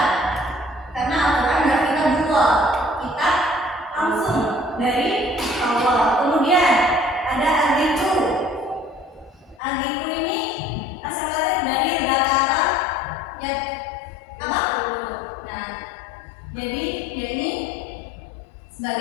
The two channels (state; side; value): drops out; right; at 9.6 s